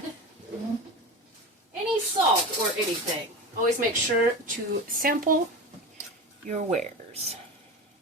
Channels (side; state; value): both; normal; correlation 0.26